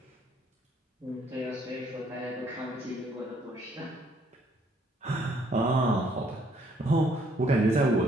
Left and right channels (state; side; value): normal; both; correlation 0.66